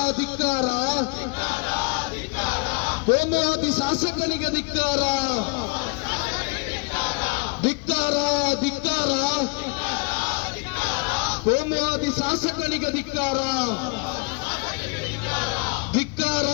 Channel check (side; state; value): right; quieter; 31.9 dB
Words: ಕೋಮುವಾದಿ ಶಾಸಕನಿಗೆ ಧಿಕ್ಕಾರ. ಕೋಮುವಾದಿ ಶಾಸಕನಿಗೆ ಧಿಕ್ಕಾರ.